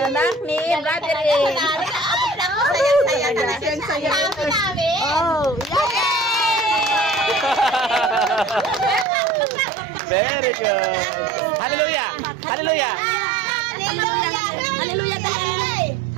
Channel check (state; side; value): drops out; left; at 9.1 s